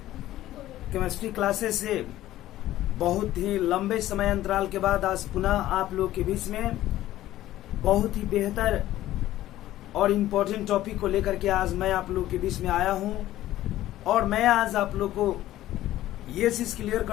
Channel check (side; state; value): right; quieter; 14.4 dB